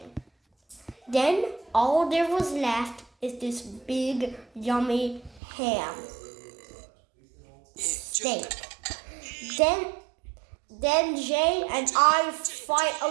Then all there was left is this big, yummy ham steak. Then Jay and I fight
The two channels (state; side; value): drops out; left; at 5.4 s